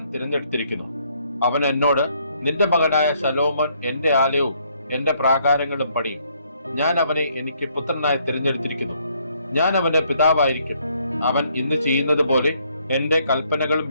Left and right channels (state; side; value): inverted; both; correlation -0.69